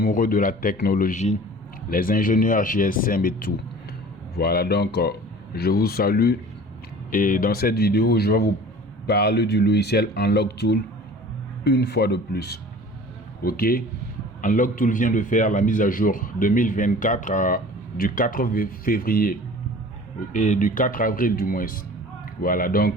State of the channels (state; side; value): normal; both; correlation 0.43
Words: de la technologie, les ingénieurs GSM et tout. Voilà donc je vous salue et dans cette vidéo je vais vous parler du logiciel Unlock Tool une fois de plus. Ok, Unlock Tool vient de faire la mise à jour 2024 du 4 février et du 4 avril du moins. Voilà